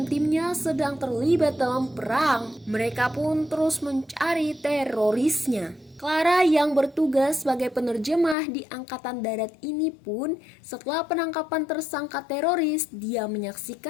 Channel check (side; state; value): right; drops out; at 8.3 s